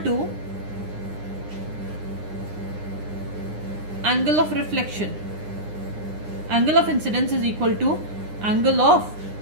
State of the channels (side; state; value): left; late; 9.8 ms